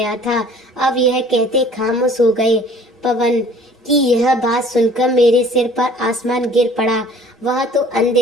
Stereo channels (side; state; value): both; normal; correlation 0.51